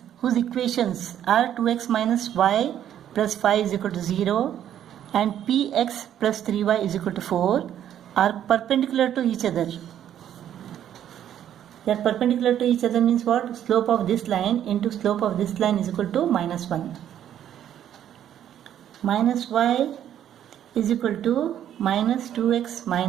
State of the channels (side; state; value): left; quieter; 10.5 dB